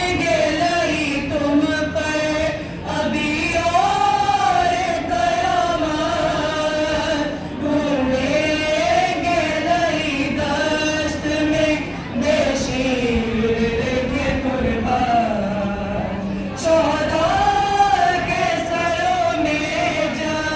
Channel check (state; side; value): identical; both; correlation 1.00